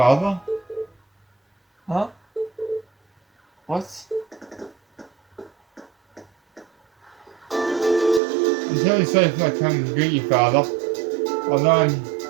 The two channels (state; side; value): drops out; left; at 8.2 s